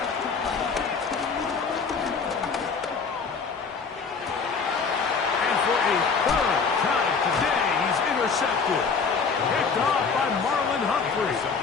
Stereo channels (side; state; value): right; quieter; 5.2 dB